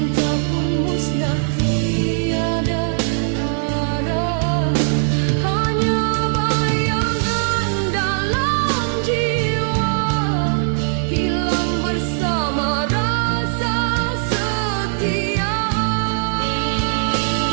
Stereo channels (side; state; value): left; silent; 66 dB below the other